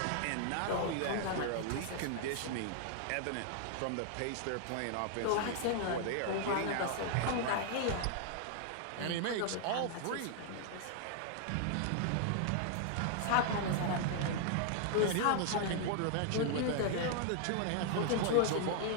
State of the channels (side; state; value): both; different; correlation 0.00